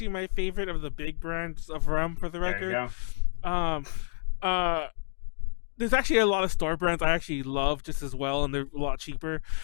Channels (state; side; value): silent; right; digital silence